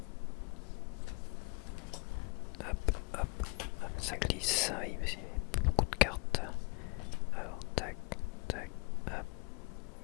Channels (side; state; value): right; quieter; 30.8 dB